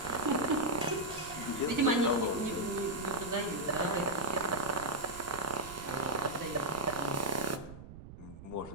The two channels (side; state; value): right; noise; rumble, 15 dB below the sound